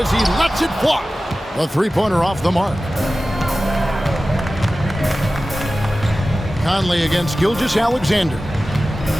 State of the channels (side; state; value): both; normal; correlation 0.95